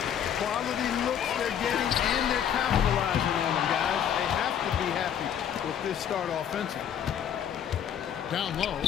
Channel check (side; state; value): right; quieter; 9.0 dB